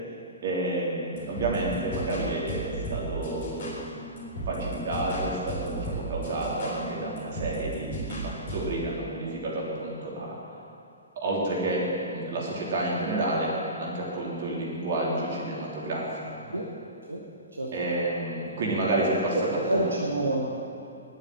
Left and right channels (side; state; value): both; inverted; correlation -0.31